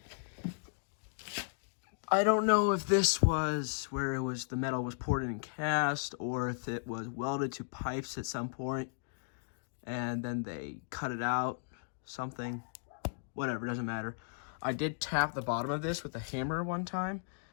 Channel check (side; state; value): right; silent; digital silence